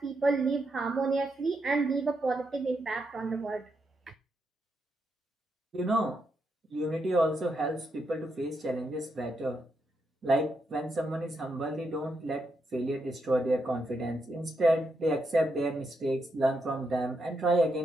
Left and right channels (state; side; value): normal; both; correlation 0.82